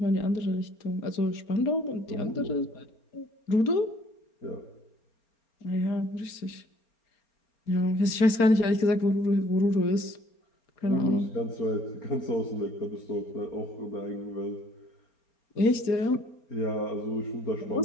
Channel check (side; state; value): right; late; 4.3 ms